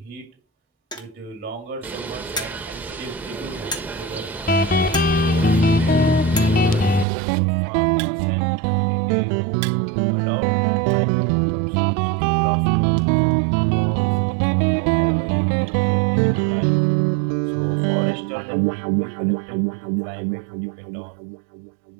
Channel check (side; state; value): left; drops out; at 7.1 s